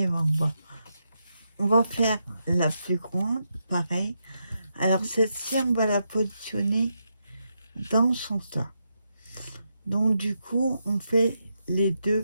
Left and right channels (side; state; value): both; inverted; correlation -0.83